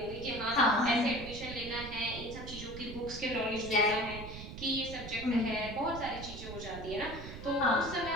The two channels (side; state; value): right; noise; rumble, 11 dB below the sound